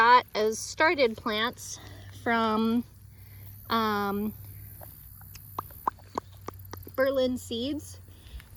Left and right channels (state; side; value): identical; both; correlation 1.00